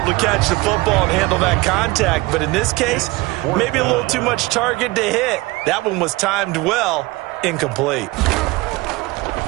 to catch the football and handle that contact, but in this case, maybe a little too much target to hit. That one was timed well, incomplete.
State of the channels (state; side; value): quieter; left; 21.5 dB